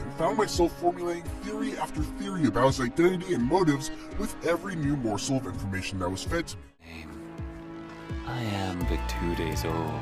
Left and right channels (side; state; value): both; identical; correlation 1.00